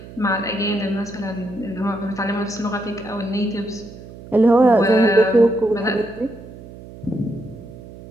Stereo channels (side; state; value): right; noise; hum, 17 dB below the sound